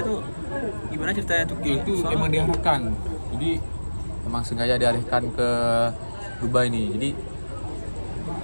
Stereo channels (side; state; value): both; inverted; correlation -1.00